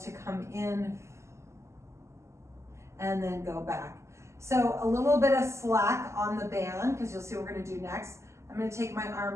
come in and then go back. So a little bit of slack on the band, because you'll see what we're gonna do next. I'm gonna take my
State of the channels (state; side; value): late; left; 0.13 ms